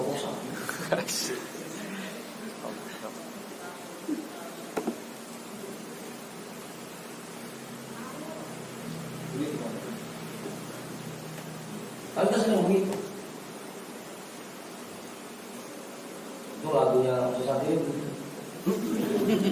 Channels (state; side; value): identical; both; correlation 1.00